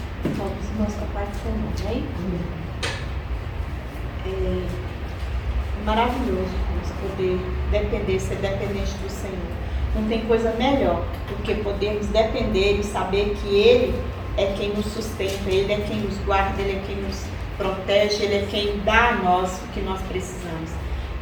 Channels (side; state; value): both; identical; correlation 1.00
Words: Vamos, irmãos, com a paz do Senhor, amém? É maravilhoso poder depender, ser dependente do Senhor. Não tem coisa melhor do que podermos depender e saber que Ele é quem nos sustenta, Ele é quem nos guarda, Ele é quem nos protege, Ele é quem dá a nós o que nós precisamos.